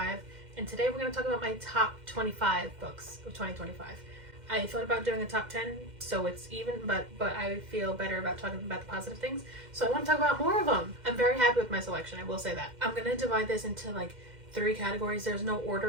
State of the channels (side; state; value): left; late; 2.1 ms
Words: and today we're going to talk about my top 25 books of 2025. I thought about doing a top 10 so it's even, but I feel better about talking about the positive things, so I want to talk about more of them. I'm very happy with my selection, I will say that. I'm going to divide this into like 3 categories. There's no